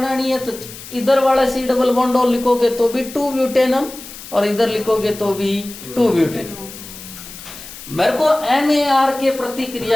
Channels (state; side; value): noise; left; hiss, 14 dB below the sound